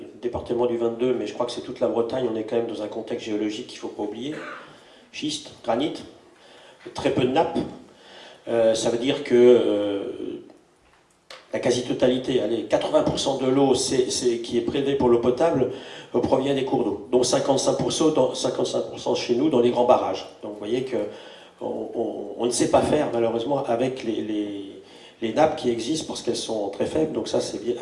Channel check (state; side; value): identical; both; correlation 1.00